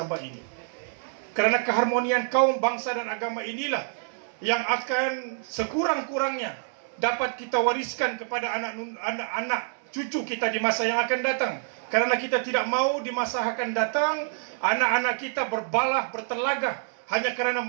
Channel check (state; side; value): silent; left; 60 dB below the other